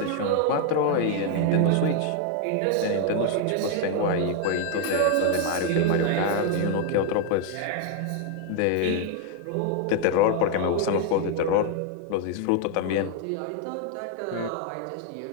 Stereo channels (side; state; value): both; different; correlation 0.00